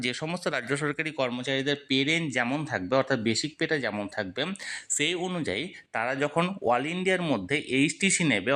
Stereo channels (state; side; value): identical; both; correlation 1.00